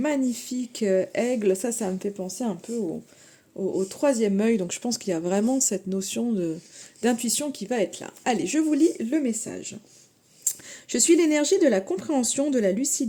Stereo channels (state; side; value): identical; both; correlation 1.00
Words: aigle, ça me fait penser un peu au troisième œil, donc je pense qu'il y a vraiment cette notion d'intuition qui va être là. Allez, je vous lis le message. Je suis l'énergie de la compréhension, de la